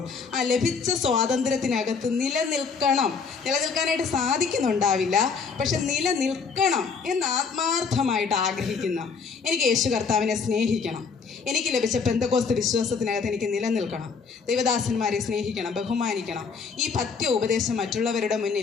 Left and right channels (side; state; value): right; quieter; 5.4 dB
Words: ആ ലഭിച്ച സ്വാതന്ത്ര്യത്തിനകത്ത് നിലനിൽക്കാനായിട്ട് സാധിക്കുന്നുണ്ടാവില്ല, പക്ഷെ നിലനിൽക്കണം എന്ന് ആത്മാർത്ഥമായിട്ട് ആഗ്രഹിക്കുന്ന എനിക്ക് യേശു കർത്താവിനെ സ്നേഹിക്കണം, എനിക്ക് ലഭിച്ച പെന്തക്കോസ്ത് വിശ്വാസത്തിനകത്ത് എനിക്ക് നിലനിൽക്കണം, ദൈവദാസന്മാരെ സ്നേഹിക്കണം, ബഹുമാനിക്കണം, ഈ പഥ്യ ഉപദേശം മറ്റുള്ളവരുടെ